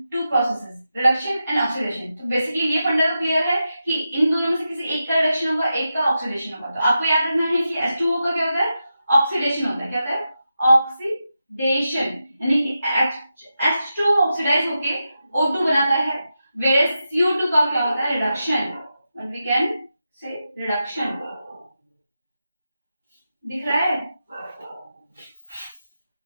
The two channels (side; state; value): both; inverted; correlation -0.89